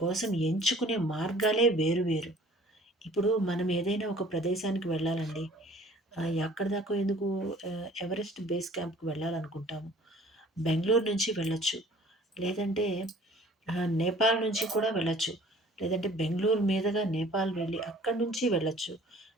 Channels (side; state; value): both; normal; correlation 0.51